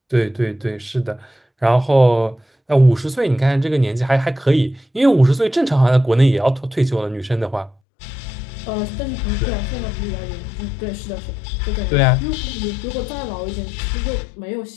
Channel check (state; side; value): drops out; right; at 7.8 s